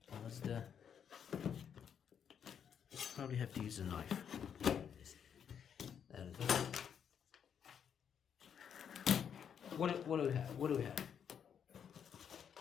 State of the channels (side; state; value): right; quieter; 8.0 dB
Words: What's the... Probably have to use a knife. There it is. What do we have? What do we have?